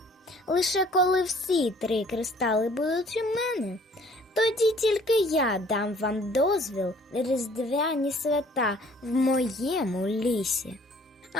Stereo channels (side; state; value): both; normal; correlation 0.56